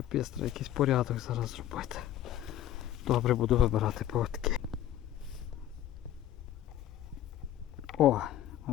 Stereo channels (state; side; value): quieter; right; 12.0 dB